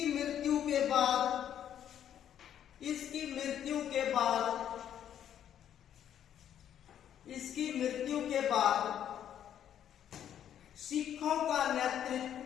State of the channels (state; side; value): quieter; right; 10.0 dB